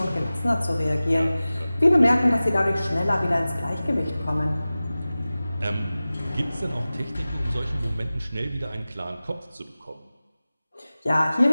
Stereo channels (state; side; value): inverted; both; correlation -0.97